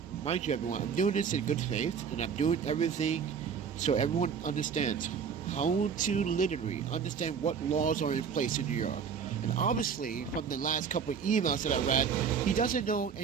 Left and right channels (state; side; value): quieter; left; 6.7 dB